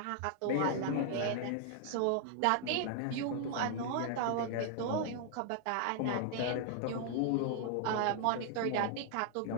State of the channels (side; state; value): both; different; correlation 0.00